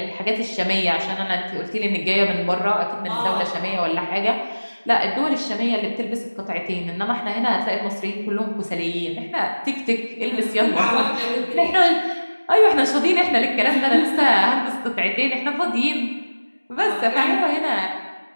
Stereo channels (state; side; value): inverted; both; correlation -1.00